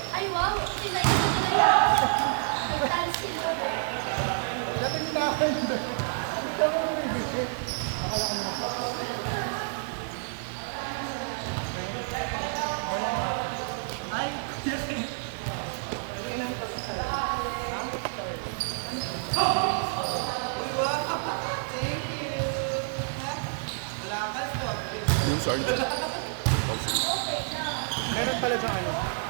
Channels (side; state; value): left; silent; digital silence